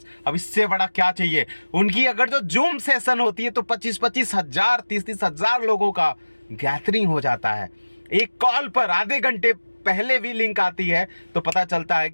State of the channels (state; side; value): inverted; both; correlation -1.00